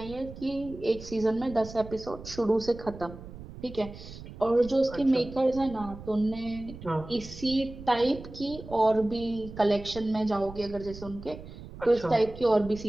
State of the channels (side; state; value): right; noise; rumble, 14 dB below the sound